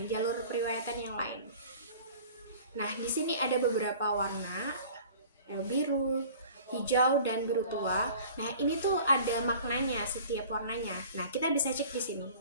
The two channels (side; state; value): both; inverted; correlation -0.45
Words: jalur periwayatan yang lain. Nah, di sini ada beberapa warna, ada biru, hijau, dan biru tua. Nah, ini tuh ada maknanya setiap warnanya. Nah, kita bisa cek di sini.